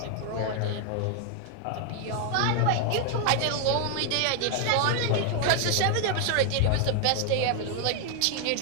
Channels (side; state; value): both; different; correlation 0.00